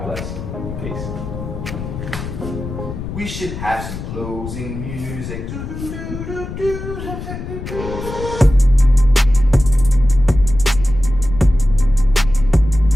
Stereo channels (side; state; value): left; noise; rumble, 8 dB below the sound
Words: bless. Peace. We should have some closing music.